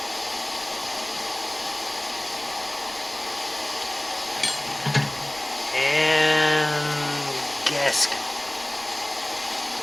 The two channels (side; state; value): right; noise; rumble, 24 dB below the sound